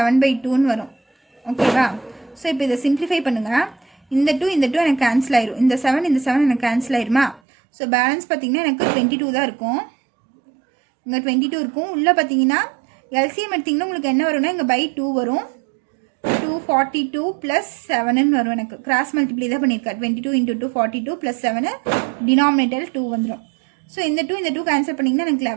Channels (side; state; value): left; drops out; at 7.4 s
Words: வரும். ஓகேவா? ஸோ இப்போ இதை சிம்ப்ளிஃபை பண்ணுங்கள். இந்த 2 எனக்கு கேன்சல் ஆயிரும். இந்த 7 எனக்கு கேன்சல் ஆயிருமா? ஸோ பேலன்ஸ் பார்த்தீங்கன்னா எனக்கு 22 தான் இருக்கும். இங்கே 22 இருக்கும். உள்ளே பார்த்தீங்கன்னா எல்சிஎம் எடுத்திங்கன்னா உங்களுக்கு என்ன வரும்னா இங்கே by 2 வரும். 242 + 7ன்னு வரும். எனக்கு கிராஸ் மல்டிப்ளை தான் பண்ணியிருக்கேன். 22 × 2 42 + 7 டினாமினேட்டர் 2 வந்துடும். ஸோ இந்த 2 கேன்சல் பண்ணிங்கன்னா எனக்கு